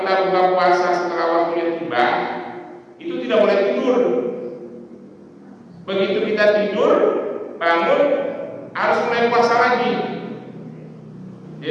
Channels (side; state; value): both; identical; correlation 1.00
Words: buka puasa setelah waktunya tiba, itu tidak boleh tidur. Begitu kita tidur, bangun, harus mulai puasa lagi.